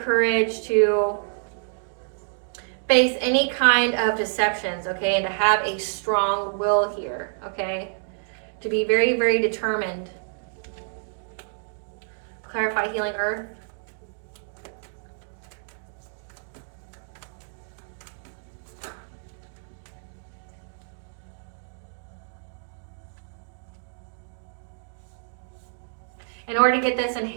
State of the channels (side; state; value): left; silent; digital silence